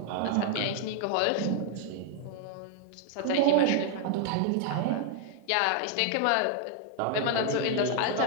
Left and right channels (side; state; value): both; different; correlation 0.00